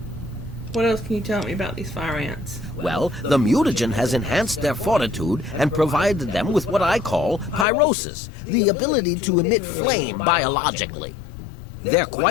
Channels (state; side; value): drops out; right; at 7.7 s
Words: What else can you tell me about these fire ants? Well, the mutagen has enhanced their fortitude and provided them with what I call pyrosis, the ability to emit flame biologically. They're